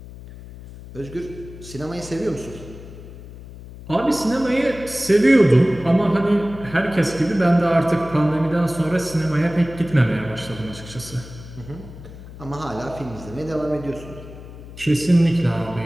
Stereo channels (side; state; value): left; noise; hum, 15 dB below the sound